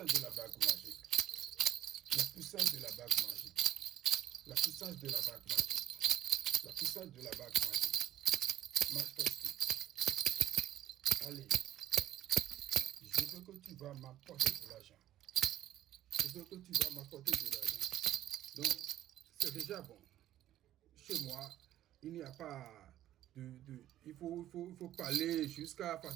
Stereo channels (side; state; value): left; quieter; 12.9 dB